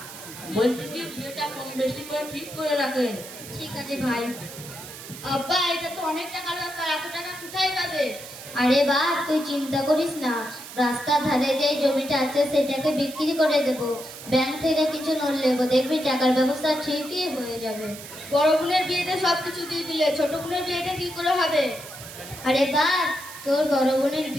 বলছি কি, বিয়েটা কম বেশি করে ঠিক করে রাখেন। ঠিক আছে ভাই। আব্বা, এটা তো অনেক টাকার ব্যাপার, এত টাকা কোথায় পাবে? আরে বাপ, তুই চিন্তা করিস না, রাস্তার ধারে যে জমিটা আছে সেটাকে বিক্রি করে দেব, ব্যাংক থেকে কিছু লোন নেবো, দেখবি টাকার ব্যবস্থা ঠিকই হয়ে যাবে। বড় বোনের বিয়েতে সবকিছু দিয়ে দিলে, ছোট বোনের বিয়েটা কি করে হবে? আরে বাপ, তোর বড় বোনের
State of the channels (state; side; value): noise; right; hiss, 13 dB below the sound